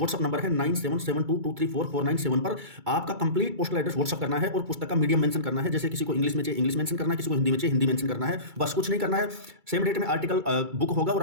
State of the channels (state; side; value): late; left; 2.3 ms